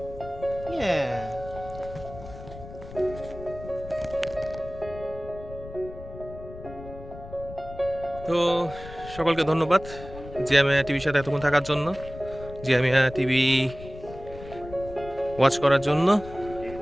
Yeah. তো সকলকে ধন্যবাদ জিএমএ টিভির সাথে এতক্ষণ থাকার জন্য, জিএমএ টিভি ওয়াচ করার জন্য।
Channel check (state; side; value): noise; left; rumble, 14 dB below the sound